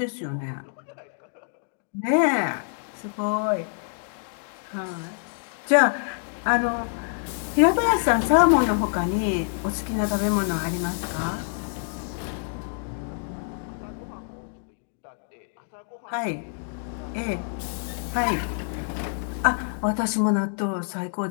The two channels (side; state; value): right; silent; digital silence